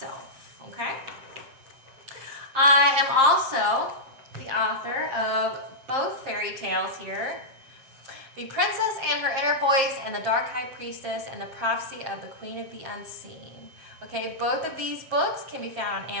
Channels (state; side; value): late; left; 7.5 ms